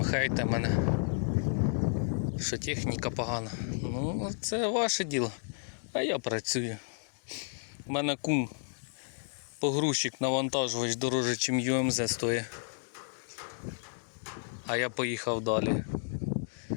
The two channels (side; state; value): right; silent; digital silence